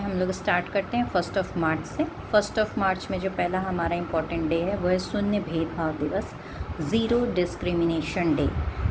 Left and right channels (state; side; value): identical; both; correlation 1.00